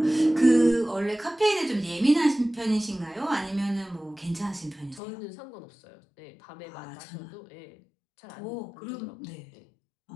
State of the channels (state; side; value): drops out; right; at 5.0 s